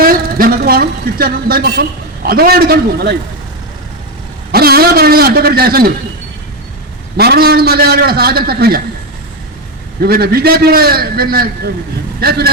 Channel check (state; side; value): normal; both; correlation 0.10